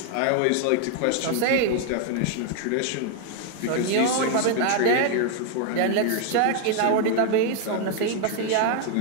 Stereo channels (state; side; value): different; both; correlation 0.00